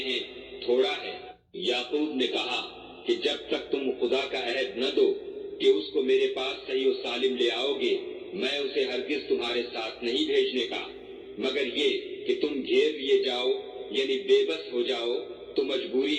تھوڑا ہے۔ یعقوب نے کہا کہ جب تک تم خدا کا عہد نہ دو کہ اس کو میرے پاس صحیح و سالم لے آؤ گے، میں اسے ہرگز تمہارے ساتھ نہیں بھیجنے کا، مگر یہ کہ تم گھیر لیے جاؤ یعنی بے بس ہو جاؤ تو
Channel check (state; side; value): identical; both; correlation 1.00